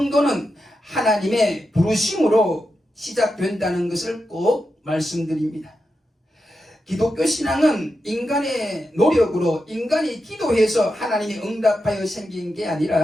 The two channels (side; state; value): both; normal; correlation 0.88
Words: 하나님의 부르심으로 시작된다는 것을 꼭 말씀드립니다. 기독교 신앙은 인간의 노력으로, 인간이 기도해서 하나님이 응답하여 생긴 게